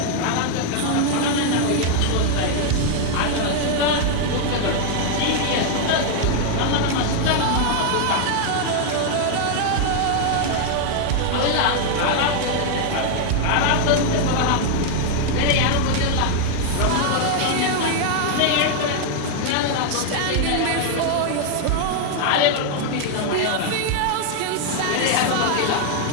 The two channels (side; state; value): both; different; correlation 0.00